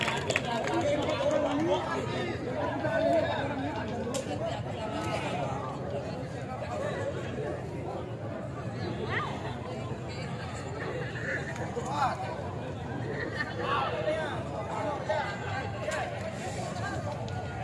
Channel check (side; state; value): both; identical; correlation 1.00